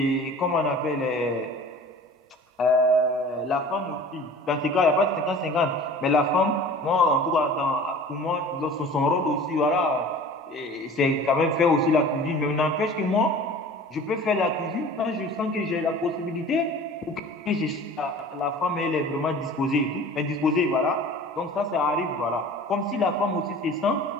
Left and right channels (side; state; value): both; normal; correlation 0.43